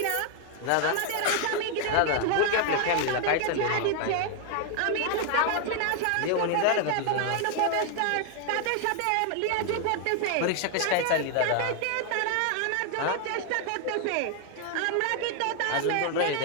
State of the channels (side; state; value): both; different; correlation 0.00